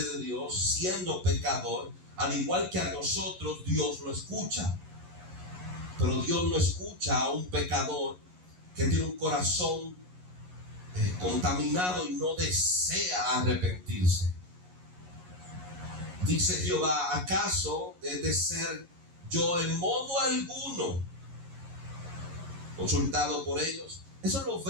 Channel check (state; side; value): late; left; 11 ms